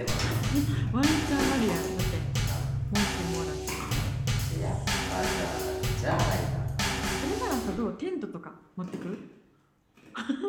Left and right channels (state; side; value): identical; both; correlation 1.00